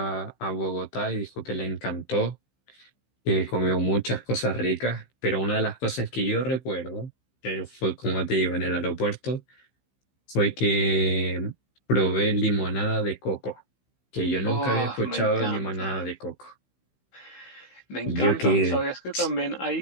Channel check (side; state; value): right; late; 15 ms